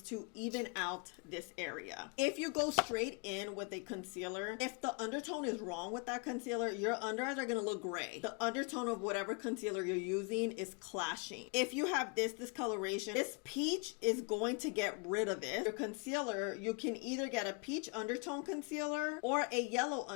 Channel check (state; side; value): quieter; right; 32.9 dB